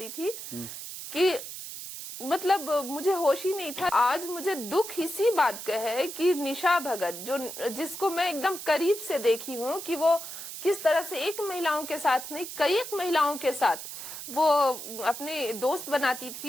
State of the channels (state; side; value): noise; right; hiss, 9 dB below the sound